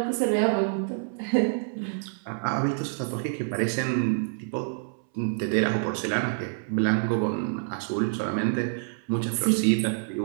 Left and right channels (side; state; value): left; silent; 60 dB below the other